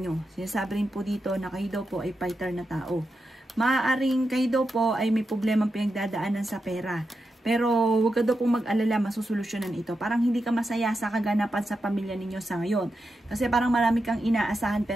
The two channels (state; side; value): normal; both; correlation 0.88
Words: Sinasabi rin po dito na kayo daw po ay fighter na tao. Maaaring kayo daw po ay may problemang pinagdadaanan sa pera. Pero huwag ka daw pong mag-alala, masusolusyonan ito. Parang hindi ka masaya sa kaganapan sa pamilya ninyo sa ngayon. Kasi parang marami kang inaasahan